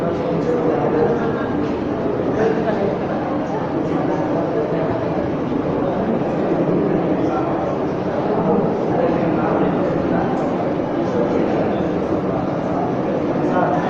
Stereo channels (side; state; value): both; identical; correlation 1.00